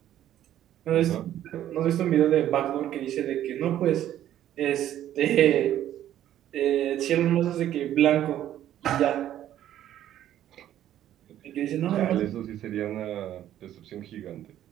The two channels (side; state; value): left; quieter; 11.9 dB